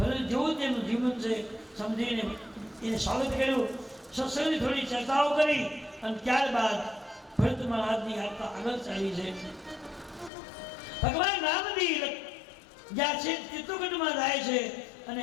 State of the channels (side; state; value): right; drops out; at 10.3 s